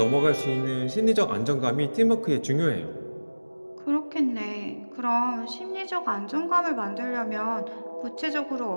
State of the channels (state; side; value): inverted; both; correlation -1.00